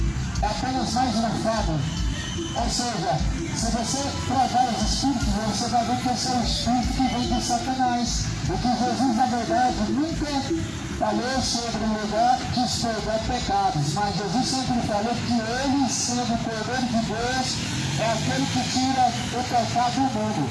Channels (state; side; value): identical; both; correlation 1.00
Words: é apenas mais uma fábula. Ou seja, se você provar os espíritos, você vai ver que esse é um espírito que vem de Satanás. O que Jesus, na verdade, nunca falou sobre o lugar de expurgar pecados, mas Jesus sempre falou que ele, sendo o Cordeiro de Deus, é aquele que tira o pecado do mundo.